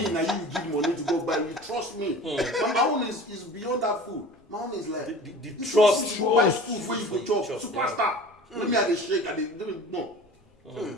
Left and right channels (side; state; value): both; normal; correlation 0.40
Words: now you give money to go buy. You trust me. But my own is beyond that food. My own is like the trust. You buy food where you go chop. Superstar. Let me have a shake and no.